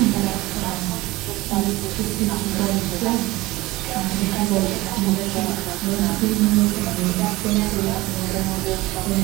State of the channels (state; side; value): quieter; left; 19.7 dB